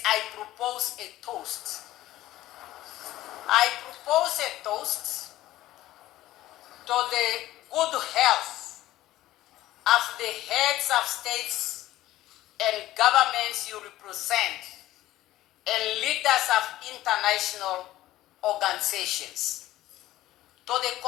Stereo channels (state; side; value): quieter; right; 15.3 dB